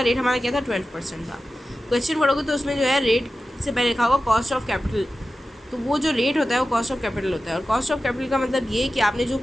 रेट हमारा क्या था 12% था। क्वेश्चन पढ़ोगे तो उसमें जो है रेट से पहले लिखा होगा कॉस्ट ऑफ कैपिटल, तो वो जो रेट होता है वो कॉस्ट ऑफ कैपिटल होता है। और कॉस्ट ऑफ कैपिटल का मतलब ये है कि आपने जो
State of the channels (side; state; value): both; normal; correlation 0.94